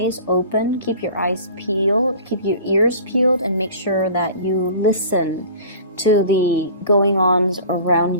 open, keep your eyes peeled, keep your ears peeled, and make sure that you listen to the going-ons around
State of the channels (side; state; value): both; inverted; correlation -0.42